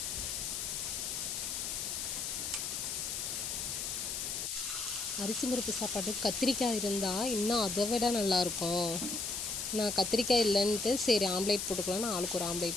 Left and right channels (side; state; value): left; noise; hiss, 3 dB below the sound